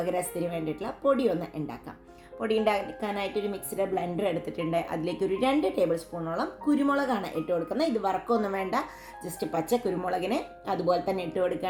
രസത്തിന് വേണ്ടിയിട്ടുള്ള പൊടി ഒന്ന് ഉണ്ടാക്കാം. പൊടി ഉണ്ടാക്കാനായിട്ടൊരു മിക്സിയുടെ ബ്ലെൻഡർ എടുത്തിട്ടുണ്ട്. അതിലേക്ക് ഒരു 2 ടേബിൾ സ്പൂണോളം കുരുമുളകാണ് ഇട്ട് കൊടുക്കുന്നത്. ഇത് വറക്കൊന്നും വേണ്ട, ജസ്റ്റ് പച്ച കുരുമുളകിനെ അതുപോലെ തന്നെ ഇട്ട്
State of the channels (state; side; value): identical; both; correlation 1.00